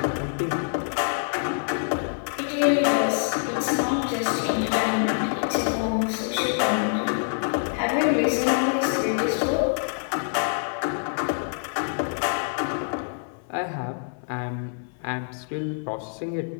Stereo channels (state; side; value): silent; right; 58 dB below the other